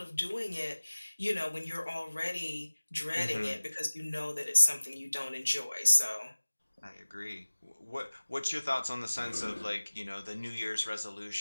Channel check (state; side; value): inverted; both; correlation -1.00